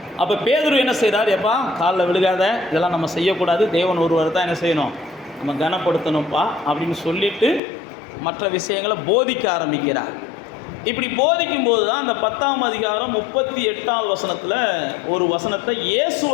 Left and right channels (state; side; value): drops out; right; at 7.6 s